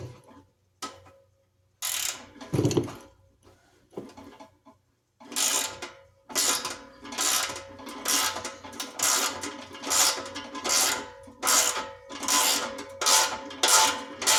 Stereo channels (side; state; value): both; identical; correlation 1.00